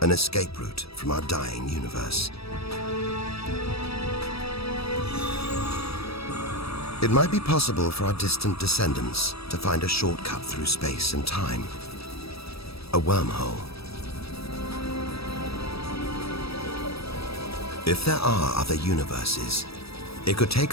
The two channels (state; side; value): late; right; 0.77 ms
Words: an escape route from our dying universe. It might be possible for our distant descendants to find a shortcut through space and time. A wormhole. If there are other universes, it could